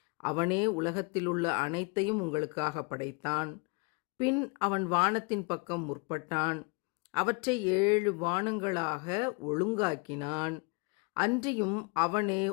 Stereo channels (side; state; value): right; quieter; 31.1 dB